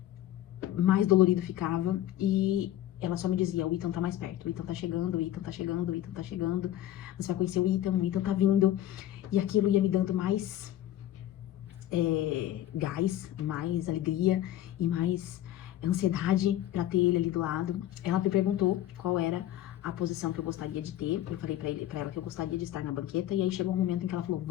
mais dolorido ficava. E ela só me dizia: o Ethan tá mais perto, o Ethan tá chegando, o Ethan tá chegando, o Ethan tá chegando. Você vai conhecer o Ethan tá vindo. E aquilo ia me dando mais gás, mais alegria e mais ansiedade pra ter ele ali do lado. Ela me perguntou qual era a posição que eu gostaria de ter. Eu falei pra ela que eu gostaria de estar na banqueta. E aí chegou um momento em que ela falou,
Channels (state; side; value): quieter; right; 12.9 dB